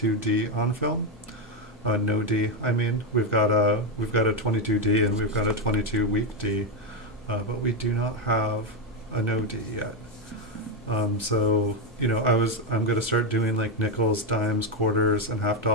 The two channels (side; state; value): both; normal; correlation 0.07